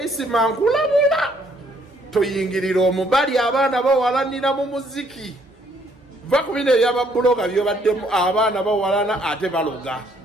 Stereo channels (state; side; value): normal; both; correlation 0.66